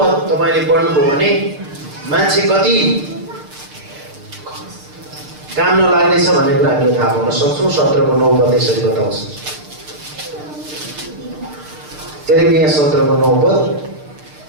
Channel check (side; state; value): left; late; 6.7 ms